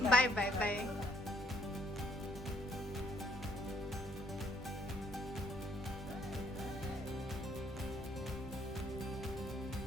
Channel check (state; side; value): normal; both; correlation 0.66